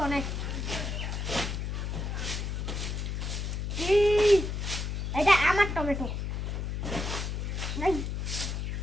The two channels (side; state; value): left; noise; hum, 2 dB below the sound